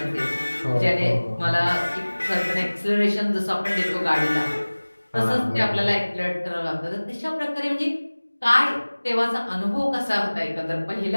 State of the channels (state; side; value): inverted; both; correlation -1.00